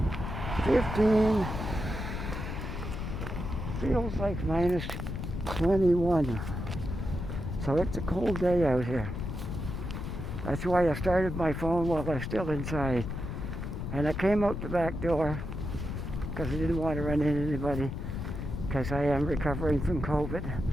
15. Feels like minus 21. So it's a cold day out here. That's why I started my phone while I was still inside. And I came out the back door because I didn't want to run into anybody, because I am recovering from COVID.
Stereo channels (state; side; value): noise; left; rumble, 5 dB below the sound